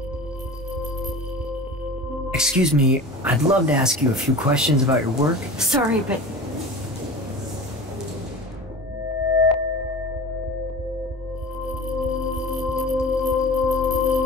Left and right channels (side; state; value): both; normal; correlation 0.35